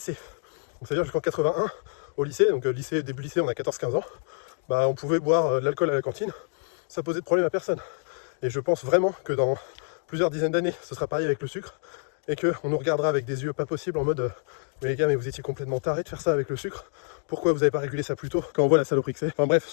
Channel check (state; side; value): silent; right; digital silence